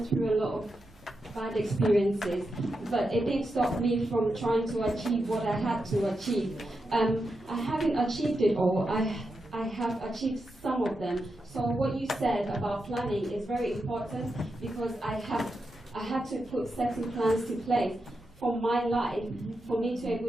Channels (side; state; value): both; normal; correlation 0.87